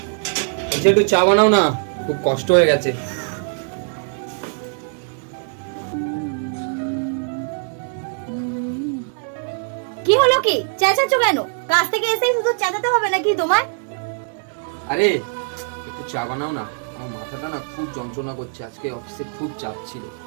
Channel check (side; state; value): left; silent; 64 dB below the other